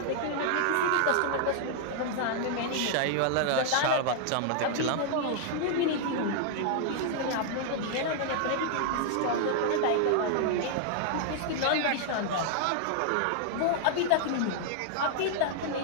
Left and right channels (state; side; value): different; both; correlation -0.01